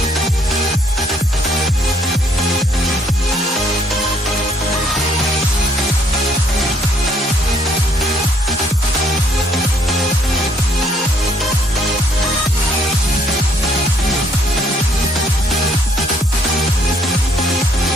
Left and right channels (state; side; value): normal; both; correlation 0.65